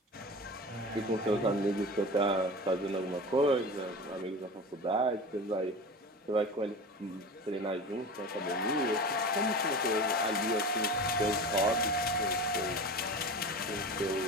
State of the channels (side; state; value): both; normal; correlation 0.32